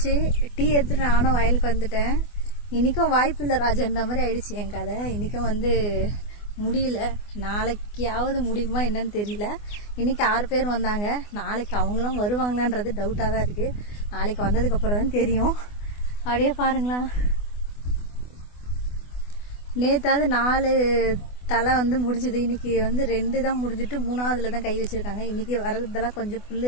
டீ எடுத்துட்டு நானும் வயலுக்கு வந்துட்டேன். இன்றைக்கும் வாய்ப்பு இல்லை ராஜான்ற மாதிரி ஆயிடுச்சு என் கதை. இன்றைக்கும் வந்து முடியல. நாளைக்காவது முடியுமா என்னன்னு தெரியல. இன்றைக்கி 6 பேர் வந்தாங்க. நாளைக்கு அவங்களும் வருவாங்களான்றது டவுட்டாக தான் இருக்குது. நாளைக்கு வந்ததுக்கப்புறம் தான் தெரியும். அப்படியே பாருங்களா, நேற்றாவது 4 தலை வந்து முடிஞ்சுது. இன்றைக்கி வந்து 2 தான் முடிஞ்சிட்டு 3ஆவதுல தான் கை வச்சுருக்காங்க. இன்றைக்கி வரதெல்லாம் கொஞ்சம்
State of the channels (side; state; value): right; late; 24 ms